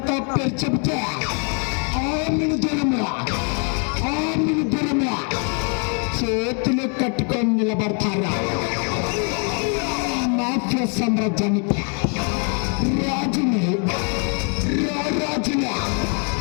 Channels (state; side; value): quieter; right; 39.5 dB